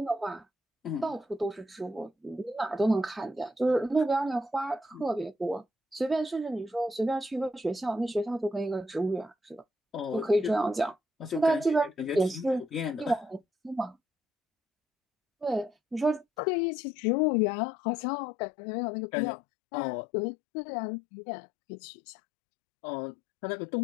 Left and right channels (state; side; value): drops out; right; at 16.2 s